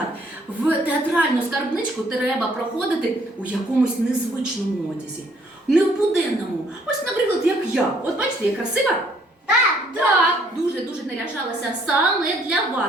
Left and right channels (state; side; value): normal; both; correlation 0.64